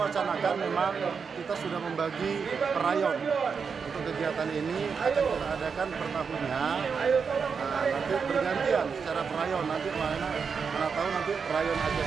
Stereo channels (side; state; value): left; quieter; 5.8 dB